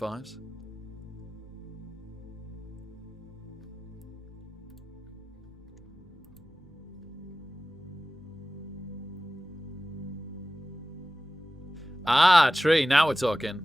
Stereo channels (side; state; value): both; normal; correlation 0.96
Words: Ah, tree. Now we're talking.